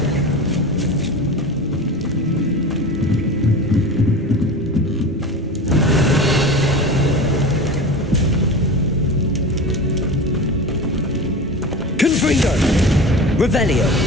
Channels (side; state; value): both; normal; correlation 0.30